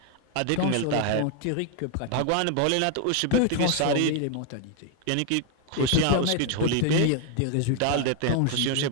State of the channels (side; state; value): both; different; correlation 0.00